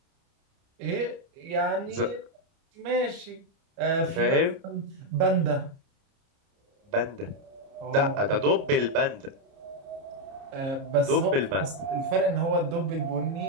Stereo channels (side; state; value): left; late; 30 ms